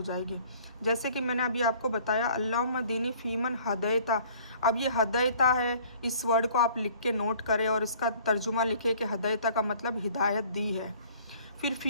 जाएगी। जैसे कि मैंने अभी आपको बताया अल्लाहुम्मा दीनी फ़ीमन हदैता। अब ये हदैता है, इस वर्ड को आप लिख के नोट करें और इसका तर्जुमा लिखे कि हदैता का मतलब हिदायत दी है। फिर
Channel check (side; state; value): both; inverted; correlation -0.54